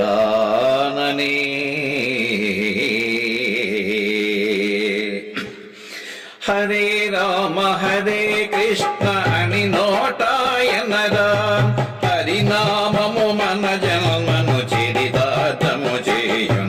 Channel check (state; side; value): identical; both; correlation 1.00